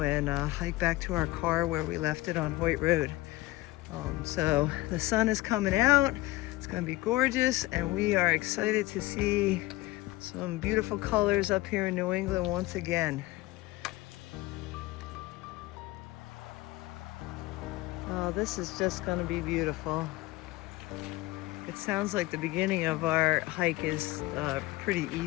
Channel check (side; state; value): right; quieter; 19.2 dB